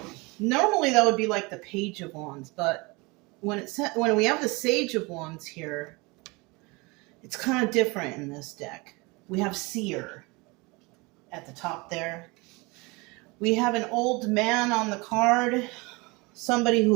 normally that would be like the Page of Wands, but when we have the Sage of Wands here, it's kind of different in this deck. We have Seer at the top there. We have an old man on the card, somebody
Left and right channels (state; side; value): quieter; left; 25.8 dB